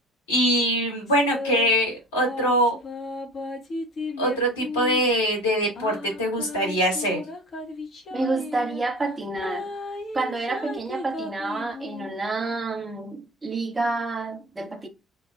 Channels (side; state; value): both; normal; correlation 0.37